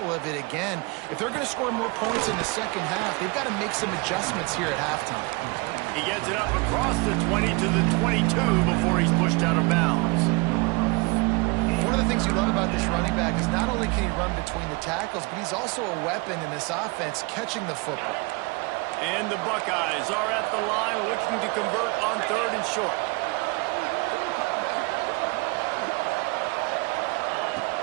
of it again. If they're going to score more points in the second half, they've got to make some adjustments here at halftime. He gets it up across the 20 to the 22 before he's pushed out of bounds. One of the things you love about this running back is not only can he run between the tackles, but he's also a weapon in this offense catching the football. And the Buckeyes are at the line looking to convert on 3rd and short.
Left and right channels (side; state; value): left; quieter; 27.9 dB